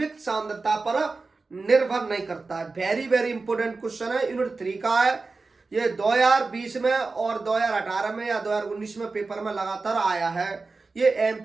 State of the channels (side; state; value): left; quieter; 3.9 dB